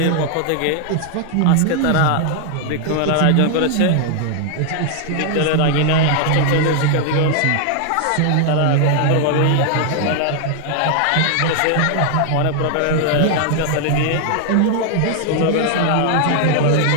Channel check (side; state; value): both; different; correlation 0.00